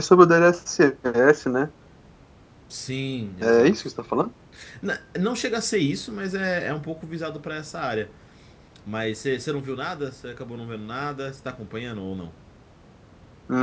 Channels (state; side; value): identical; both; correlation 1.00